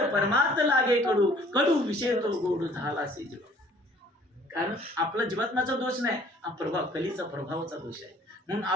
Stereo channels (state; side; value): normal; both; correlation 0.56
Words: परमार्थ लागे कडू, कडू विषय तो गोड झाला असे जीव. कारण आपला जीवात्माचा दोष नाही, हा प्रभाव कलीचा प्रभावाचा दोष आहे. म्हणून